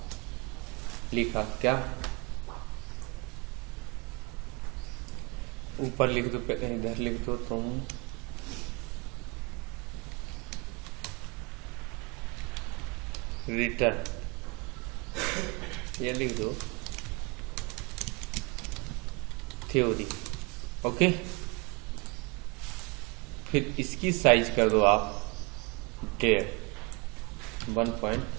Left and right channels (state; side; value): quieter; left; 28.7 dB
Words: लिखा क्या, ऊपर लिख दो, इधर लिख दो तुम रिटर्न, ये लिख दो थ्योरी। ओके। फिर इसकी साइज कर दो आप 1.5